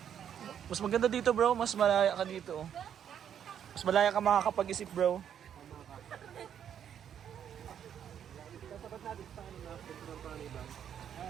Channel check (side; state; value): left; quieter; 9.1 dB